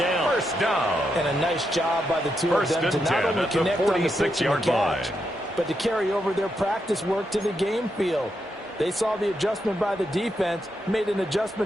First down. And a nice job by the two of them to not only connect on the pitch and catch, but to carry over their practice work to the game field. They saw the adjustment by the defense, made an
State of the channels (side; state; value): both; normal; correlation 0.83